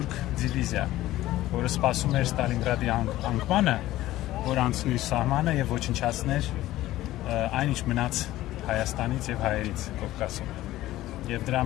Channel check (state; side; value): quieter; right; 15.6 dB